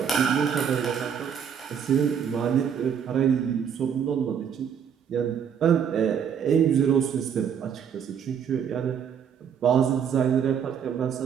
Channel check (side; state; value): left; quieter; 7.8 dB